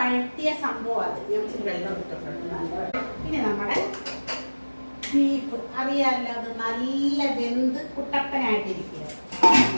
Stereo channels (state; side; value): inverted; both; correlation -1.00